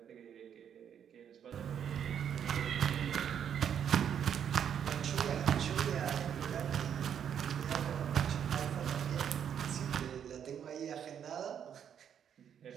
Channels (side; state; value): left; quieter; 8.6 dB